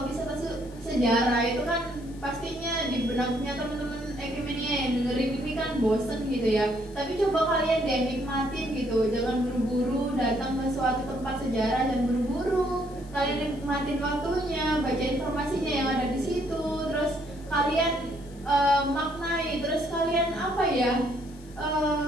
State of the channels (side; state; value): left; noise; hiss, 25 dB below the sound